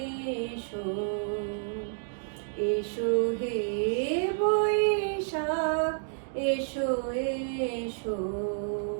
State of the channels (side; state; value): left; silent; digital silence